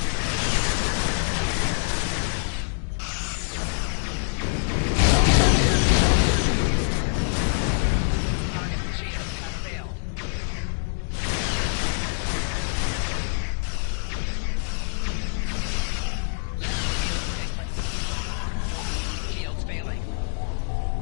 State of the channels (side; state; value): right; silent; digital silence